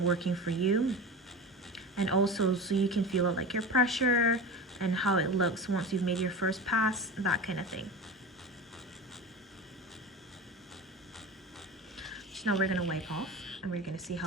working for you. And also so you can feel it, like your pressure and how it looks once you've made your first pass, that kind of thing. So now we're going to wipe off and we're going to see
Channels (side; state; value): both; normal; correlation 0.30